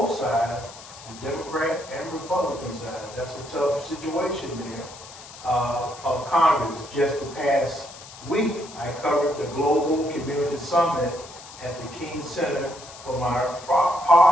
sides, the Democrat and Republican side. That's a tough situation there. Of Congress. Just the past week, I covered the Global Community Summit at the King Center for my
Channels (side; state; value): left; noise; hiss, 17 dB below the sound